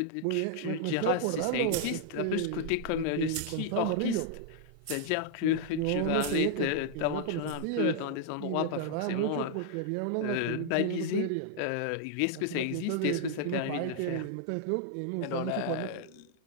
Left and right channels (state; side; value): different; both; correlation 0.00